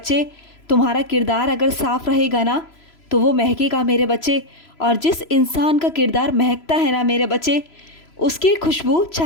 तुम्हारा किरदार अगर साफ रहेगा ना तो वो महकेगा मेरे बच्चे। और जिस इंसान का किरदार महकता है ना मेरे बच्चे, उसकी खुशबू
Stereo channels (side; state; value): right; late; 3.0 ms